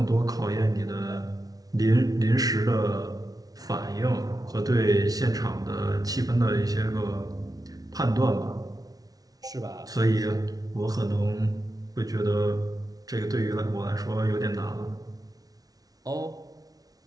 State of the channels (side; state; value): left; late; 0.18 ms